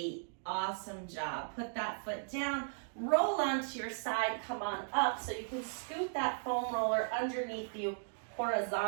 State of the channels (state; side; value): silent; left; digital silence